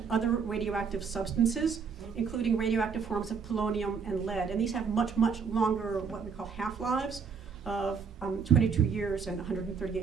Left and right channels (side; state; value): left; quieter; 6.0 dB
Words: other radioactive substances, including radioactive forms of polonium and lead. And these have much, much longer, what we call half-lives, of 22 years and